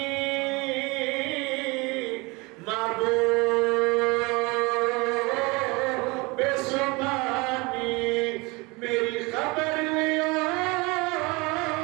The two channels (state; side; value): quieter; left; 25.8 dB